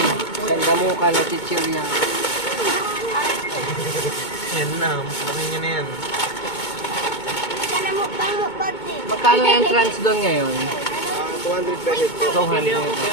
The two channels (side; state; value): right; late; 2.2 ms